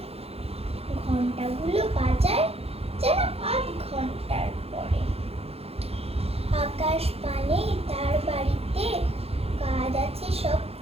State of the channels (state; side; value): late; left; 0.29 ms